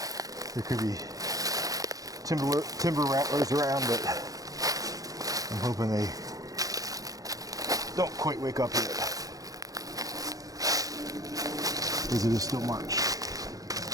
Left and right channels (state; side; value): late; left; 0.17 ms